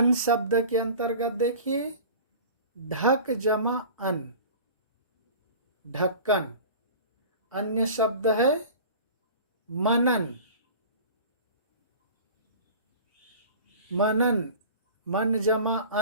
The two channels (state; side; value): inverted; both; correlation -0.40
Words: शब्द के अंतर्गत देखिए, ढक जमा अन, ढक्कन। अन्य शब्द है मनन, मनन, मन जमा